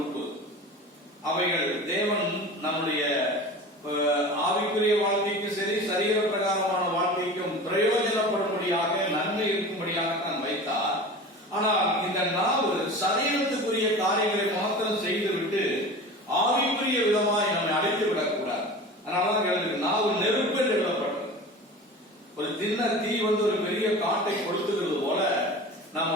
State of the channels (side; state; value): both; normal; correlation 0.35